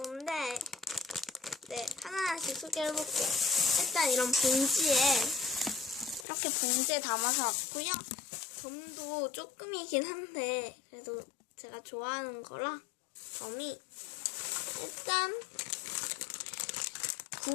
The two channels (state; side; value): drops out; right; at 6.2 s